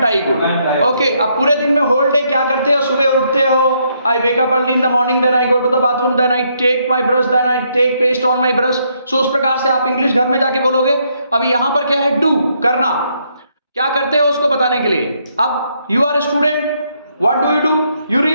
आई गुड। ओके, अब पूरे दिन में होल डे क्या करते हो? सुबह उठते हो, I wake up early in the morning, then I go to the bathroom, then I take my brush, then I take paste on my brush. So उस प्रकार से आप इंग्लिश घर में जाके बोलोगे। अब यहां पर क्या है? डू, करना। क्या करते हो उसको बताने के लिए। अब you are a student, what do you do? You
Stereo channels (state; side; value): inverted; both; correlation -0.74